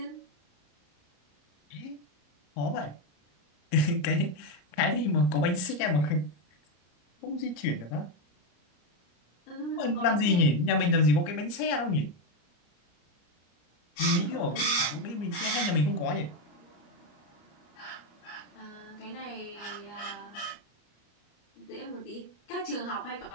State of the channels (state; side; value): late; right; 34 ms